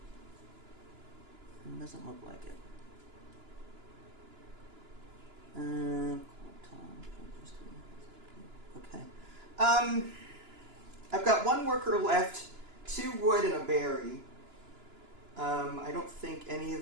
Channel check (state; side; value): late; left; 2.9 ms